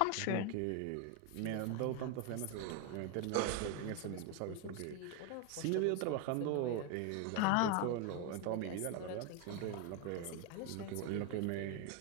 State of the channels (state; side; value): different; both; correlation 0.01